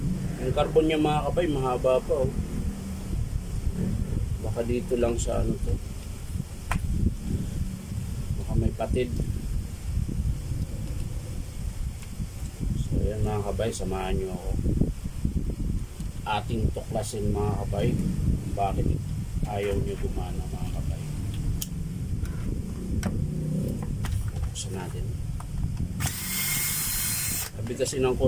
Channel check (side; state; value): both; identical; correlation 1.00